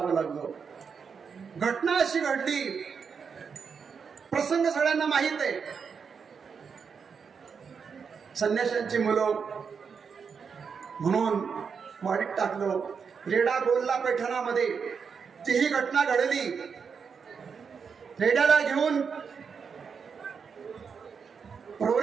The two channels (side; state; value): left; quieter; 6.1 dB